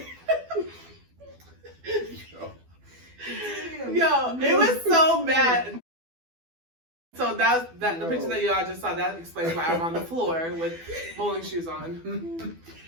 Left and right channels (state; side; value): late; left; 12 ms